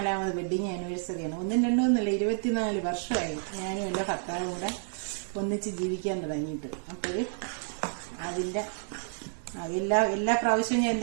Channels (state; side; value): silent; left; 58 dB below the other